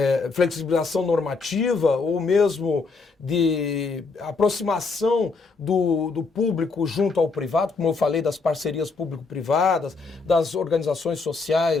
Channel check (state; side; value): quieter; right; 4.2 dB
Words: flexibilização normativa ou mesmo de aproximação do público junto ao privado, como eu falei, das parcerias público-privadas, das organizações